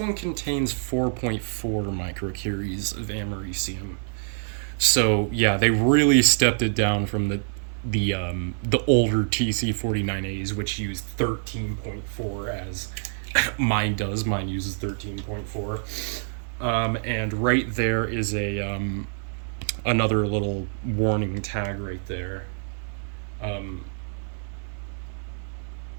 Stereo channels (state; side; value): silent; left; digital silence